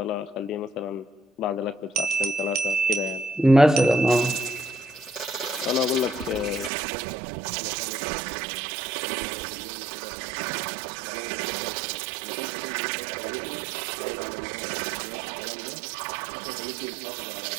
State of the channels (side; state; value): left; drops out; at 6.7 s